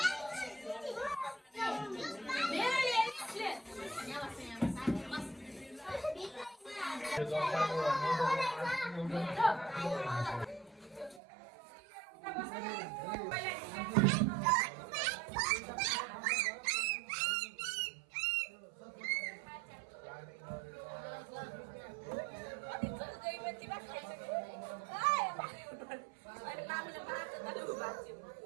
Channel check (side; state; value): left; drops out; at 11.2 s